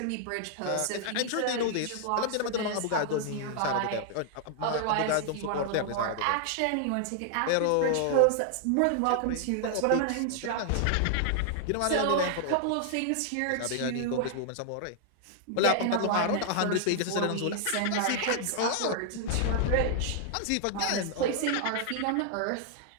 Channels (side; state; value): both; different; correlation 0.00